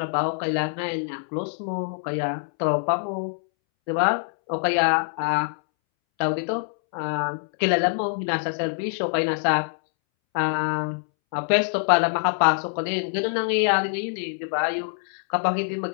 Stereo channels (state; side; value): silent; right; 62 dB below the other